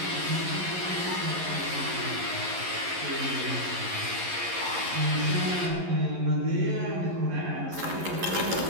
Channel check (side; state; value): left; late; 11 ms